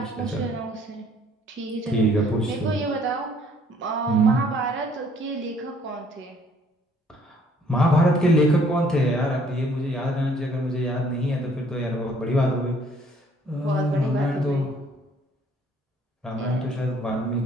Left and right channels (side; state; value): both; normal; correlation 0.61